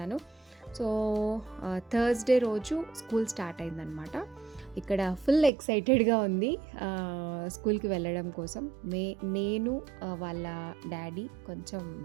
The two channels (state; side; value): drops out; left; at 5.5 s